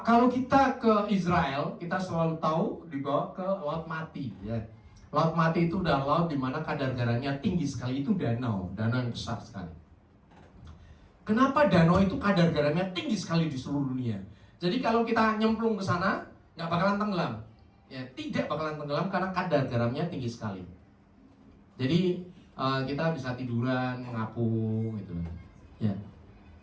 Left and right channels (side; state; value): both; identical; correlation 1.00